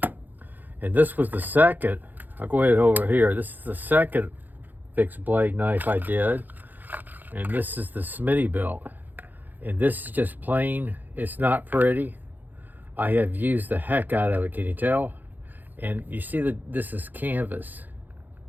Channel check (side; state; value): left; late; 0.086 ms